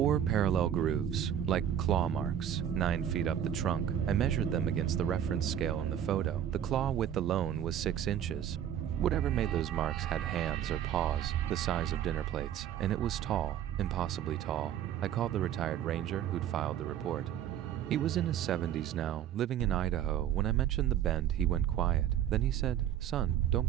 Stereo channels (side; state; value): left; quieter; 10.1 dB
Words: parallel grooves, like claw marks, 9 feet up the trunk. I measured them against the reference scale in the photo. The claw width alone was 6 inches. Whatever made those marks had hands or paws, the size of dinner plates, and it was tall, impossibly tall. I called the retired ranger who'd filed the report. He was in his 70s now, living in Idaho. When I mentioned the Bend, he went quiet. Then he said, "Son, don't